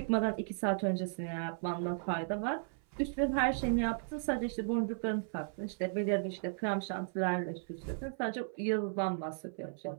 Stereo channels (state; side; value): silent; left; 54 dB below the other